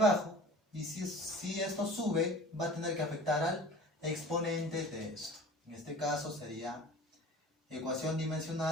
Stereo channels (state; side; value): normal; both; correlation 0.42